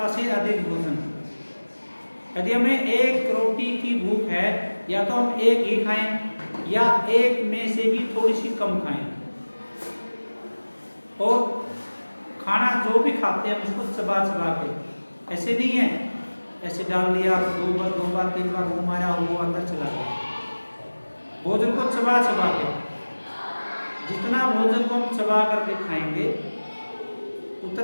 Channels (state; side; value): inverted; both; correlation -1.00